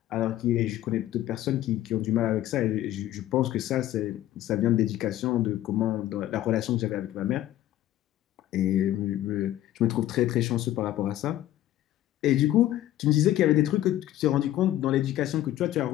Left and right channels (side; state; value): right; quieter; 13.5 dB